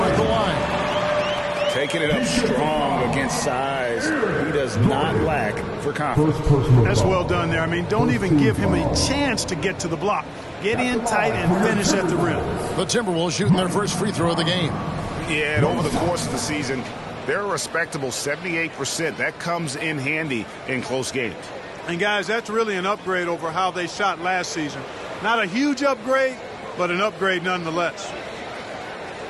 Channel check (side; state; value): both; identical; correlation 1.00